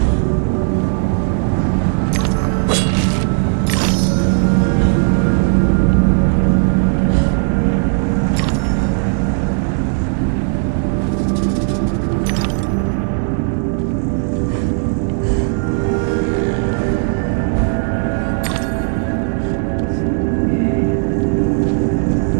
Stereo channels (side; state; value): left; silent; 57 dB below the other